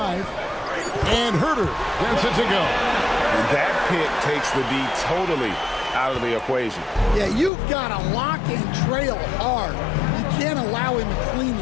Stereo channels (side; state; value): right; drops out; at 7.5 s